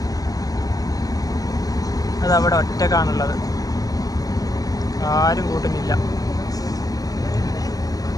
അതവിടെ ഒറ്റക്കാണുള്ളത്. ആരും കൂട്ടുന്നില്ല.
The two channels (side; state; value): right; late; 0.18 ms